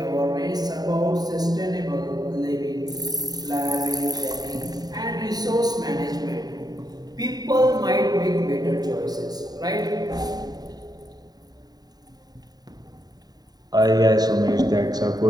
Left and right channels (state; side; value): late; left; 0.19 ms